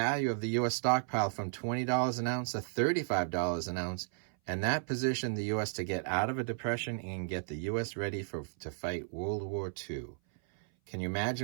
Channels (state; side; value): silent; left; 55 dB below the other